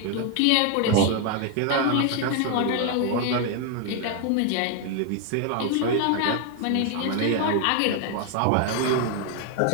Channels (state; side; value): different; both; correlation 0.00